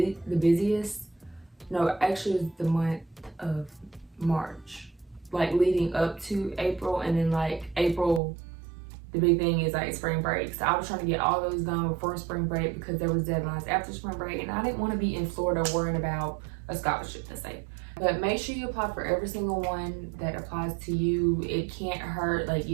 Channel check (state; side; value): drops out; left; at 8.2 s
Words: No, actually it was the month of March, like leading up to April. And then like April, the big thing is like spring break. So I was trying to get all those done before spring break because there was deadlines after spring break, and I didn't want to be in Florida worrying about a scholarship to say. But make sure you apply for every single one that applies to you. It can't hurt, like